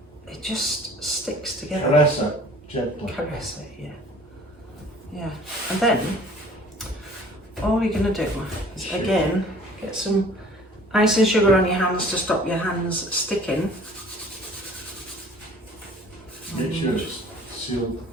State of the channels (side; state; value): both; normal; correlation 0.51